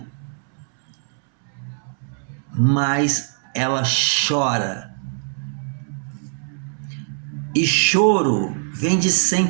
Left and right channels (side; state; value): left; silent; 64 dB below the other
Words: mas ela chora. E choro vem de